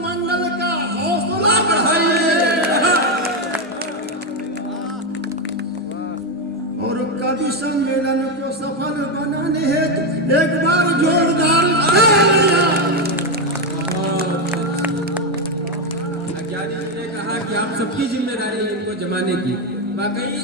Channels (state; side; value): normal; both; correlation 0.07